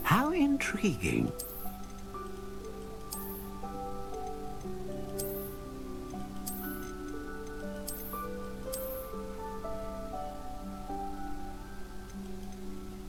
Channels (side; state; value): both; identical; correlation 1.00